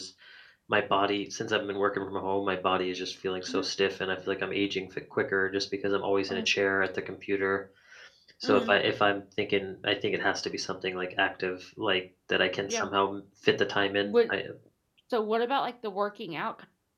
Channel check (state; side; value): identical; both; correlation 1.00